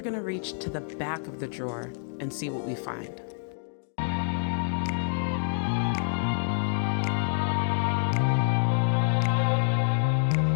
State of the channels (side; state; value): right; silent; digital silence